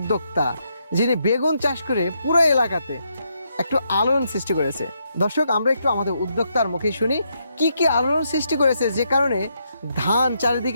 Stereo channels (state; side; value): inverted; both; correlation -0.78